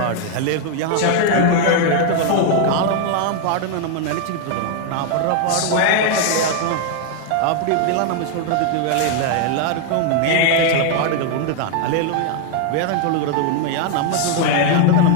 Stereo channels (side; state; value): both; different; correlation 0.00